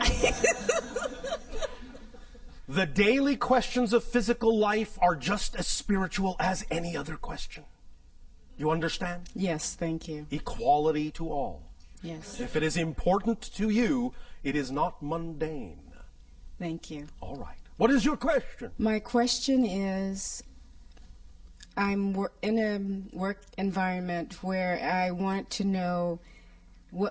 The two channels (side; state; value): both; identical; correlation 1.00